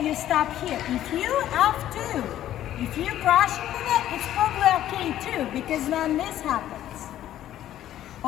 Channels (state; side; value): quieter; right; 12.4 dB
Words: you stop here. If you F2, if you're crashing the net, it's probably okay too, because then this happens.